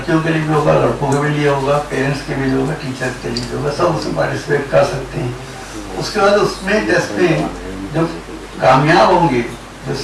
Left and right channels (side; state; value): both; identical; correlation 1.00